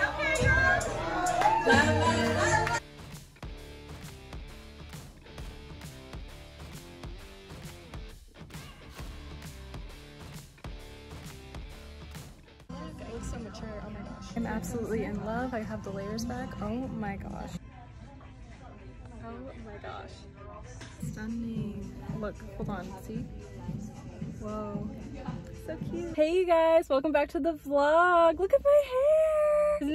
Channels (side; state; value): both; identical; correlation 1.00